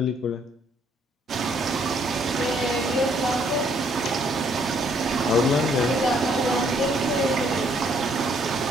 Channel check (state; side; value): normal; both; correlation 0.67